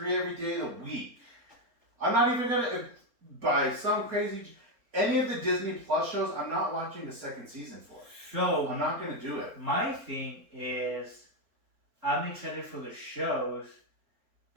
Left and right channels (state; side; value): late; left; 3.9 ms